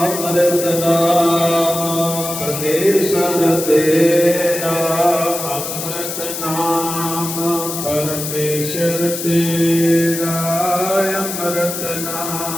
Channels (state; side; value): noise; left; hiss, 6 dB below the sound